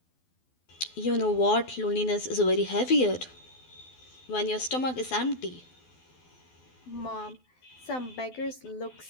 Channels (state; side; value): late; right; 12 ms